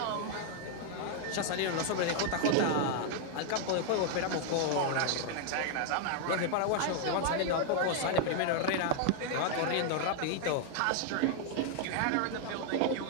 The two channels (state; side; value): different; both; correlation 0.00